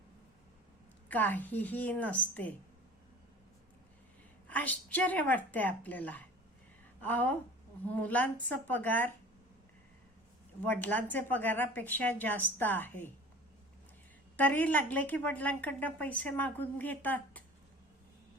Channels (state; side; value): normal; both; correlation 0.42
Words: काहीही नसते. आश्चर्य वाटते आपल्याला. अहो, मुलांचा पगार वडिलांचे पगारापेक्षा जास्त आहे, तरी लागले की वडिलांकडनं पैसे मागून घेतात.